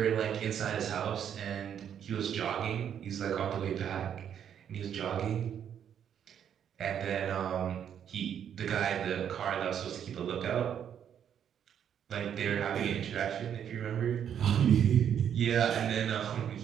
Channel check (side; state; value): left; quieter; 8.9 dB